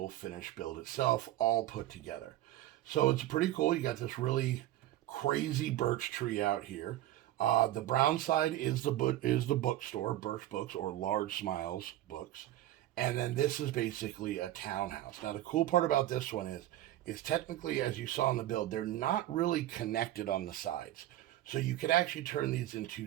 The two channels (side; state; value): left; quieter; 14.3 dB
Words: finished build itself, all put together. So it's pretty cool. You got this really crazy birch tree out here. The brown side is the bookstore, Birch Books or Large Smiles Books, and then this is basically a townhouse. Now the cool part about this one is technically, as you saw in the build, they're not really connected on the sides. So you could actually turn these